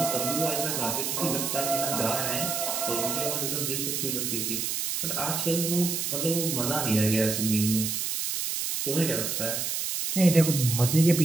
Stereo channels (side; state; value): right; noise; hiss, 1 dB below the sound